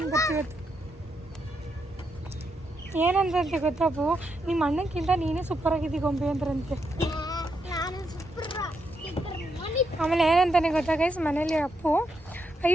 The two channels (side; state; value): both; normal; correlation 0.81